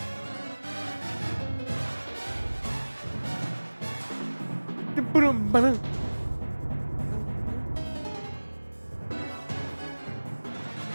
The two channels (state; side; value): inverted; both; correlation -1.00